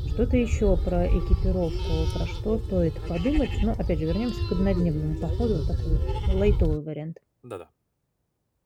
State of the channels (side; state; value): both; identical; correlation 1.00